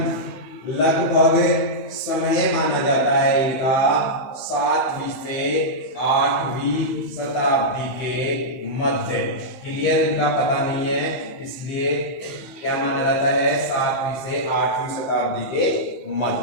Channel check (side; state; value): right; late; 16 ms